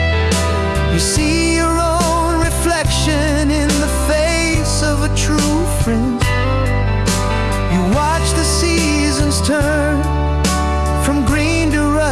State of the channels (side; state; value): both; identical; correlation 1.00